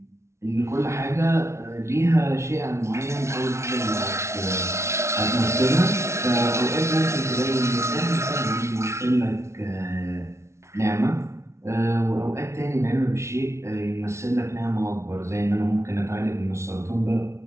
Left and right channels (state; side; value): late; left; 0.13 ms